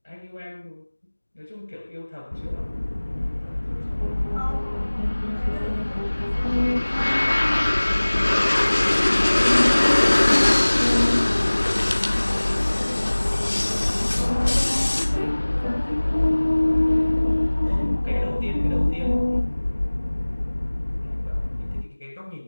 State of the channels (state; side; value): inverted; both; correlation -1.00